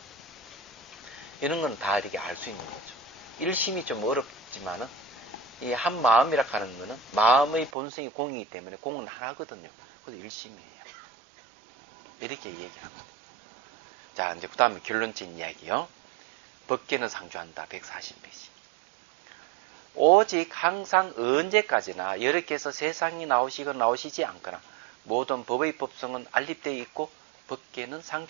이런 건 다 이렇게 알 수 있는 거죠. 일심이 좀 어렵지만은 이 한 마음이라 하는 거는 마음의 본성이 공이기 때문에 공은 하나거든요. 그래서 일심이에요. 이렇게 얘기를 합니다. 자 이제 그 다음에 결론적인 이야기요. 법계는 상주한다. 140페이지. 오직 항상 언제까지나 여러께서 세상이 나오시거나 나오시지 않거나 모든 법의 법성은 알립되어 있고 법계는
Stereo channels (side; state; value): left; drops out; at 7.7 s